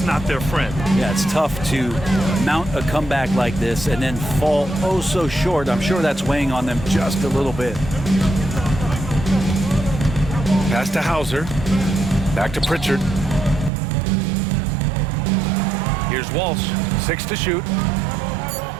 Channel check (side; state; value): left; drops out; at 13.7 s